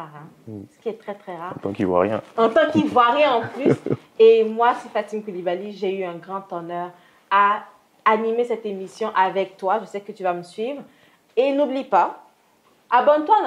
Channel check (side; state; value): both; identical; correlation 1.00